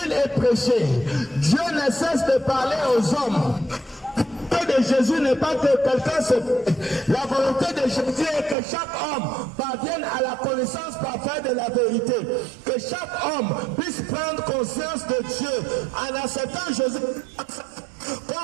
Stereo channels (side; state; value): left; drops out; at 8.6 s